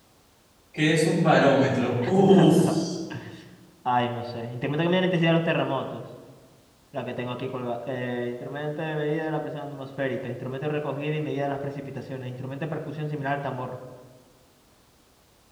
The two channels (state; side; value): identical; both; correlation 1.00